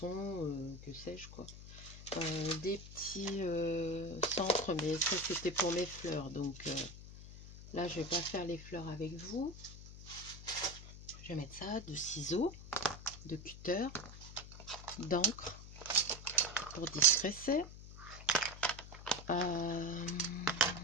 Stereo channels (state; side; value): noise; left; hum, 14 dB below the sound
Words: que sais-je quoi. Des petits centres, mais ça c'était pour mes fleurs, donc là je vais pas faire les fleurs avec vous. Je vais mettre ça, de ciseaux, de cutter, d'encre pour distresser,